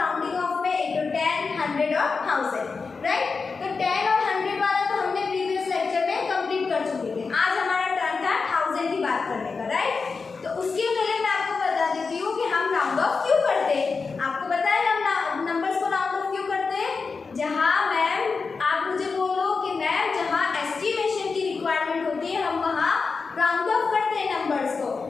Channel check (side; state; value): right; quieter; 4.7 dB